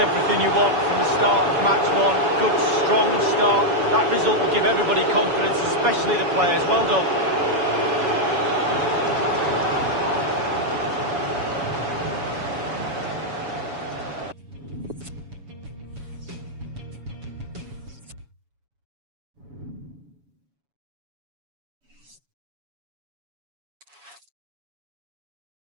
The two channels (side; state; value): left; late; 7.1 ms